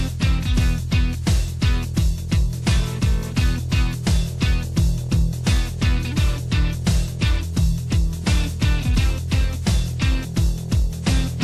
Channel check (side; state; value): both; identical; correlation 1.00